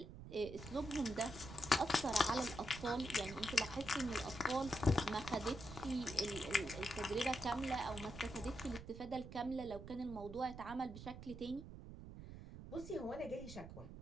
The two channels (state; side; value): noise; right; rumble, 12 dB below the sound